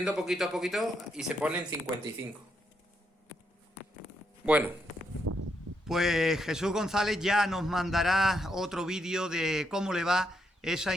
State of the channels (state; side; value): normal; both; correlation 0.78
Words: poquito a poquito y se pone en 55. Bueno. Pues Jesús González ya nos mandará otro vídeo de cómo le va esa